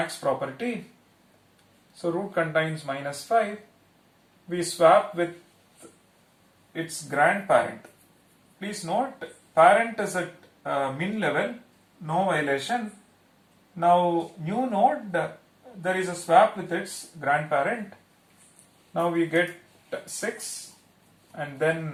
property. So root contains minus 5. We swap with its grandparent. Please note, parent is at min level, no violation. Now new node, there is a swap with its grandparent. Now we get 6 and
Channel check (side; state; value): both; identical; correlation 1.00